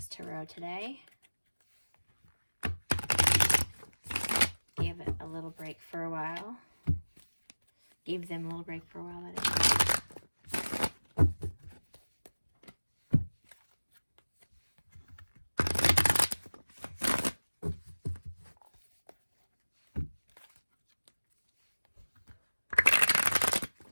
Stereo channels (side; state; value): both; inverted; correlation -1.00